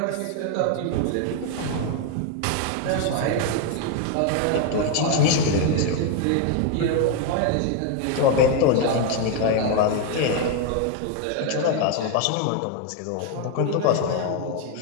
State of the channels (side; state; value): both; different; correlation 0.01